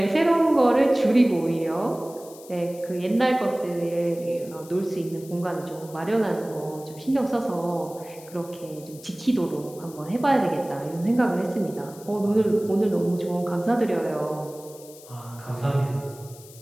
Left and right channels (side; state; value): left; noise; hiss, 20 dB below the sound